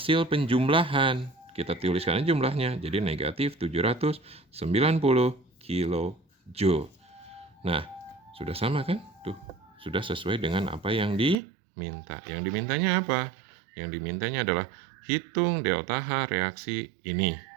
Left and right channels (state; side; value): drops out; left; at 11.4 s